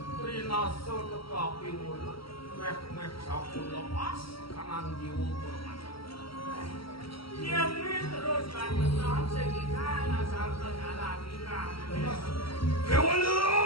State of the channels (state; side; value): late; right; 0.75 ms